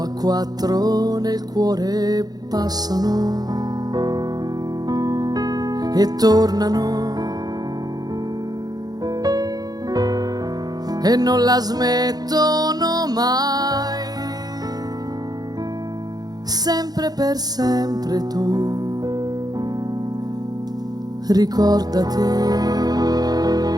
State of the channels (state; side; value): late; left; 0.19 ms